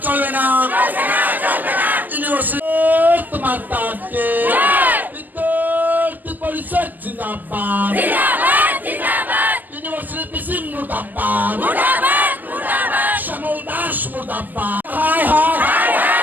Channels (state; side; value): late; left; 0.087 ms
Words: চলবে না। ইউনিভার্সিটি তোমার তাকে বিদ্যার্থী পরিষদ জিন্দাবাদ, ইউনিভার্সিটি পিসি মুর্দাবাদ, শ্যামল দাস মুর্দাবাদ। হায় হায়